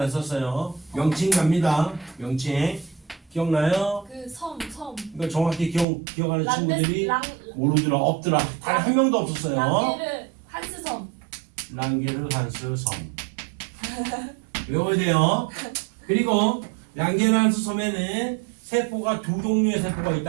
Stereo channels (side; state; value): left; drops out; at 5.9 s